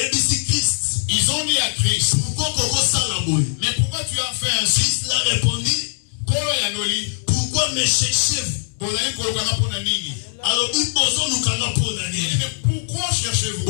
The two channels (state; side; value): silent; right; digital silence